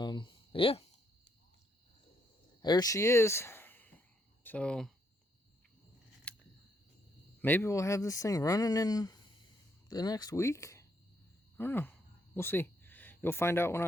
Yeah, there she is. So maybe we'll have this thing running in the next week. I don't know. We'll see. You'll find out when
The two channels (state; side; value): normal; both; correlation 0.74